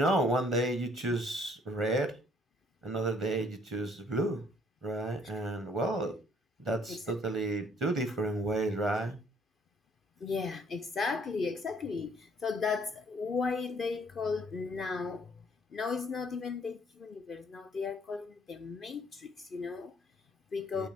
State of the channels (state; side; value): normal; both; correlation 0.62